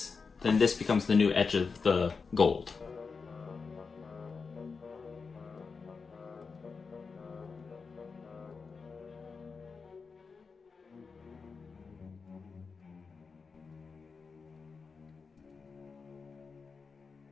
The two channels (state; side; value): quieter; right; 4.9 dB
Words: then this becomes the new edge of the gold.